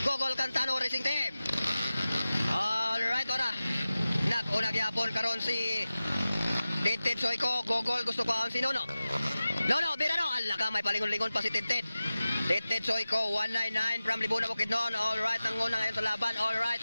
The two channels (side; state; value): both; inverted; correlation -0.96